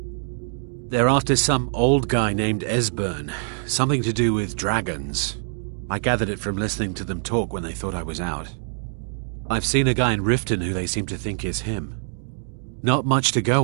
They're after some old guy named Esbern. Something to do with dragons. I gathered it from listening to them talk when they thought I was out. I've seen a guy in Riften who they seem to think is him. Not much to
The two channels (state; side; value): silent; left; 63 dB below the other